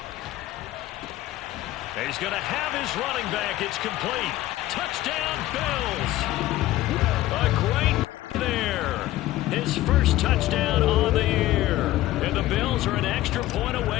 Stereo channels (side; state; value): right; quieter; 15.8 dB